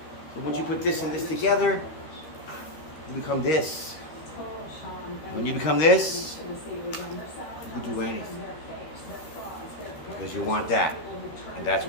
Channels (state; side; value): late; right; 13 ms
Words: So once you put this and this together, you become this. When you become this, you can do anything. Because you want that. And that's